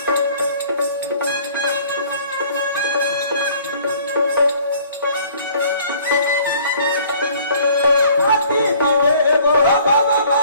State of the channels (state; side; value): inverted; both; correlation -0.55